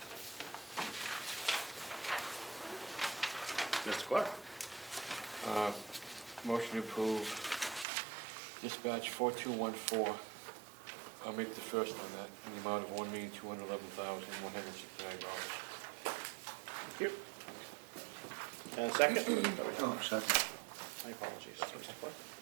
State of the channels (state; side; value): drops out; left; at 7.9 s